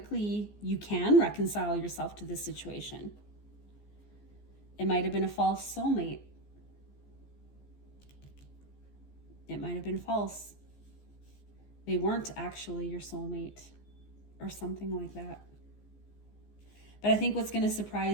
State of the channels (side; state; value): right; late; 14 ms